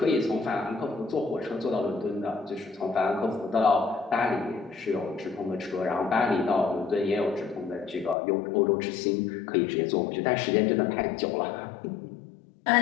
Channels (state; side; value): drops out; right; at 8.2 s